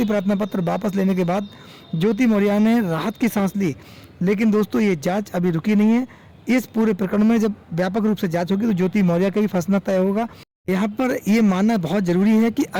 प्रार्थना पत्र वापस लेने के बाद ज्योति मौर्य ने राहत की सांस ली। लेकिन दोस्तों, ये जांच अभी रुकी नहीं है। इस पूरे प्रकरण में जब व्यापक रूप से जांच होगी तो ज्योति मौर्य का भी फंसना तय होगा। यहाँ पर ये मानना बहुत जरूरी है कि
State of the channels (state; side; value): identical; both; correlation 1.00